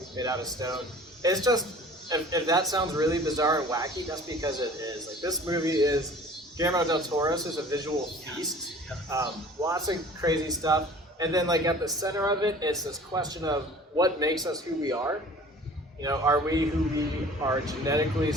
made out of stone. It's just, if that sounds really bizarre and wacky, that's because it is. Like, this movie is Guillermo del Toro's is a visual feast. Lots of crazy stuff. And then like at the center of it, it's this question of what makes us who we are. Are we who we are genetically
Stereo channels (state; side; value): normal; both; correlation 0.46